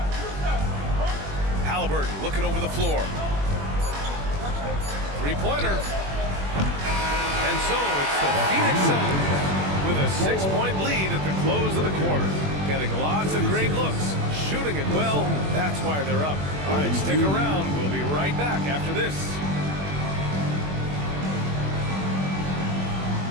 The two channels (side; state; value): left; late; 21 ms